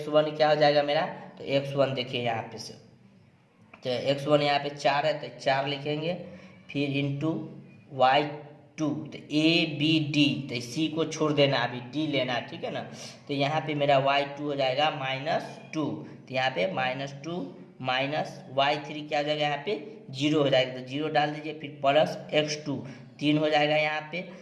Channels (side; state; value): both; identical; correlation 1.00